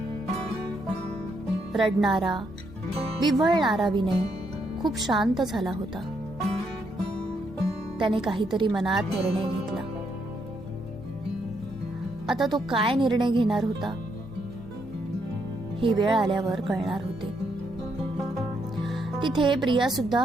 रडणारा, विव्हळणारा विनय खूप शांत झाला होता. त्याने काहीतरी मनात निर्णय घेतला. आता तो काय निर्णय घेणार होता ही वेळ आल्यावर कळणार होते. तिथे प्रिया सुद्धा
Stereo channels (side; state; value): both; normal; correlation 0.76